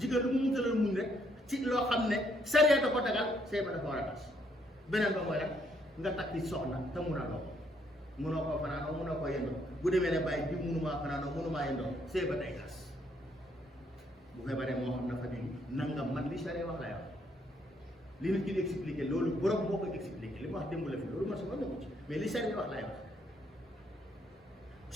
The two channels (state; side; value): normal; both; correlation 0.71